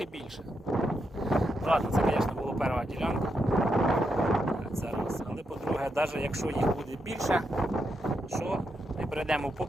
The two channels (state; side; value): normal; both; correlation 0.82